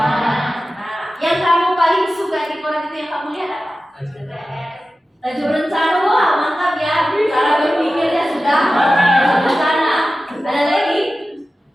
yang kamu paling suka di koran itu yang kamu lihat apa? Tajuk rencana. Wah, mantap ya. Cara berpikirnya sudah rencana. Ada lagi?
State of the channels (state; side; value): normal; both; correlation 0.95